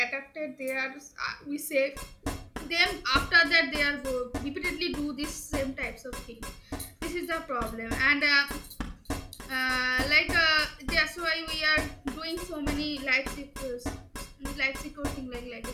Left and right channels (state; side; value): identical; both; correlation 1.00